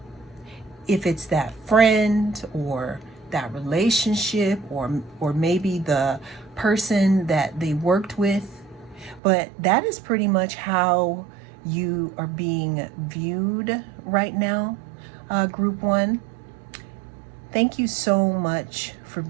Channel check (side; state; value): left; drops out; at 9.2 s